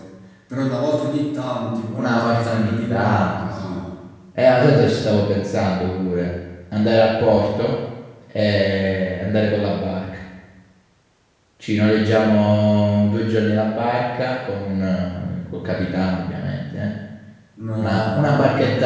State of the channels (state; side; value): identical; both; correlation 1.00